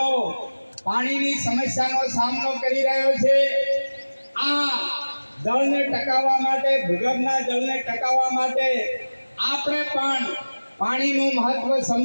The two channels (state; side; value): inverted; both; correlation -1.00